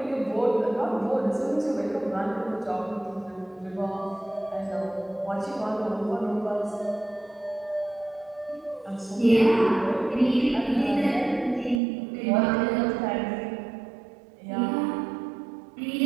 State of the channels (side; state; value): left; drops out; at 11.8 s